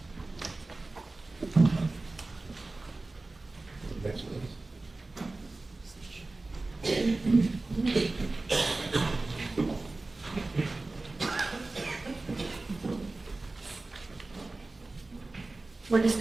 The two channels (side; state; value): left; quieter; 3.2 dB